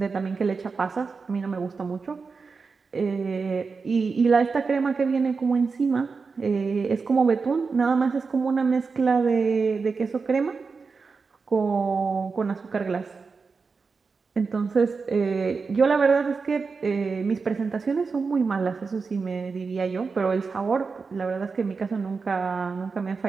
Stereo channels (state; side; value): quieter; left; 4.8 dB